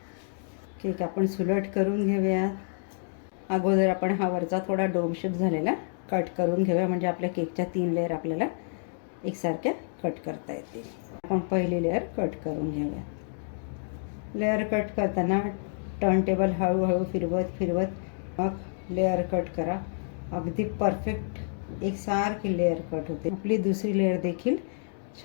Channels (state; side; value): silent; right; digital silence